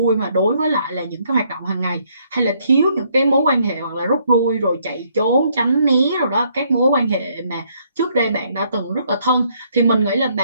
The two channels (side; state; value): both; inverted; correlation -0.69